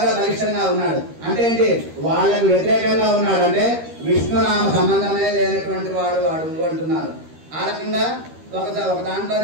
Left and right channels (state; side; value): late; left; 13 ms